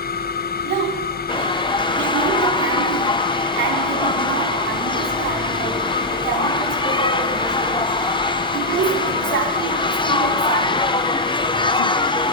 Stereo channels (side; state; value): both; normal; correlation -0.03